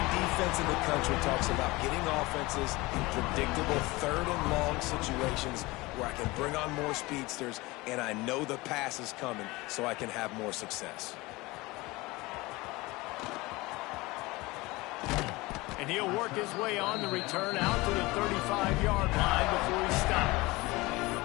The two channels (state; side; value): quieter; right; 21.9 dB